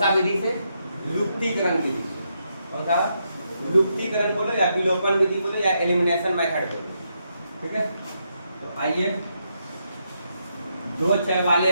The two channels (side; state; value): both; inverted; correlation -0.80